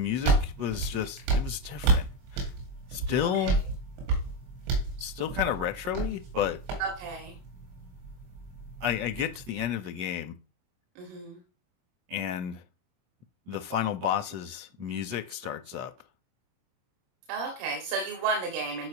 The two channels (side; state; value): left; late; 22 ms